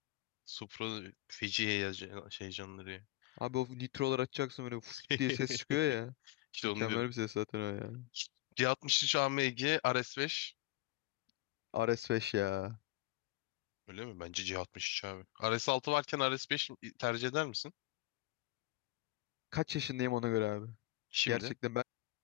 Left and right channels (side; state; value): right; quieter; 19.2 dB